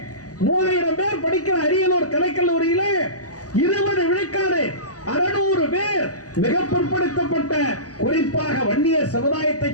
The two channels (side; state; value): right; late; 0.67 ms